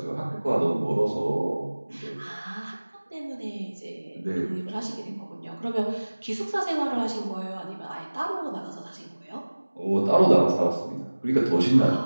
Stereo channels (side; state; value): both; inverted; correlation -1.00